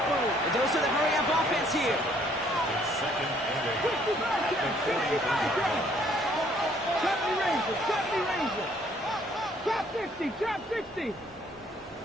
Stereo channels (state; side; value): normal; both; correlation 0.63